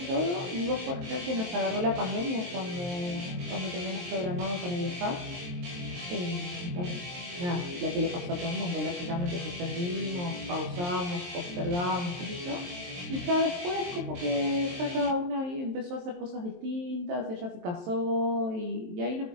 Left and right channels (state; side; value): late; left; 23 ms